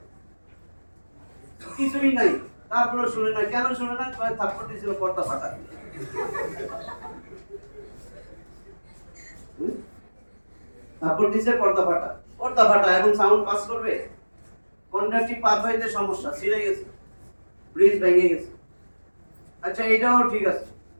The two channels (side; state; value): both; inverted; correlation -1.00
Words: কিছুই নাই, তারপরে শুনে না। কেন শুনে না? থাপ্পড় দিয়েছিল পর্দা ফাটা, থাপ্পড় দিয়েছে পর্দা ফাটা, পর্দা ফাটা, এখন সাউন্ড পাস করবে? কন্ডাকটিভ পাথওয়েতে সমস্যা, ছিঁড়ে গেছে, ব্রিজ ভেঙে গেছে। আচ্ছা এটাও ঠিক আছে,